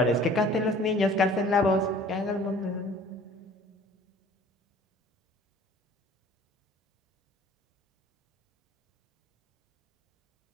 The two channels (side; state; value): both; normal; correlation 0.50